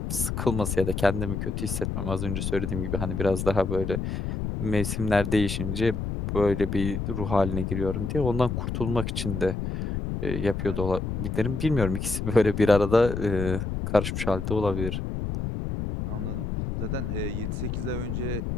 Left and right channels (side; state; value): left; noise; rumble, 3 dB below the sound